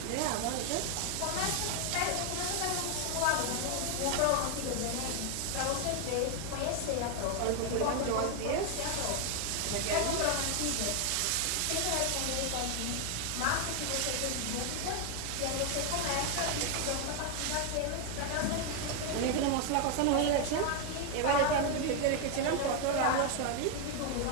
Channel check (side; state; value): both; different; correlation 0.01